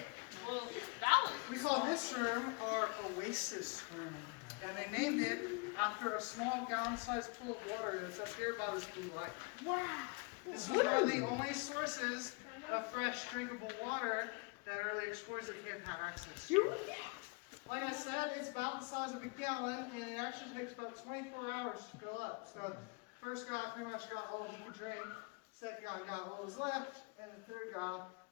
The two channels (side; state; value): right; quieter; 31.7 dB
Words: Well, that was We call this room our Oasis Room. And they named it after a small gallon-sized pool of water that's up here by this blue light. Wow. This was one of the only sources of fresh drinkable water that early explorers of the cave had access to. Like I said, it's about the size of a gallon, and it actually takes about 24 hours to fill up. So, first guy pretty much got all he could drink, second guy got what was left, and the third guy